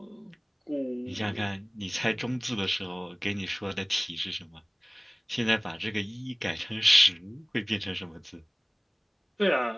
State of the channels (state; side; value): identical; both; correlation 1.00